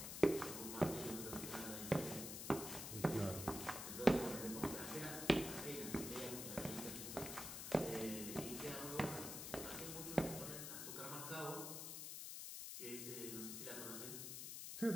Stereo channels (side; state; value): left; noise; hiss, 6 dB below the sound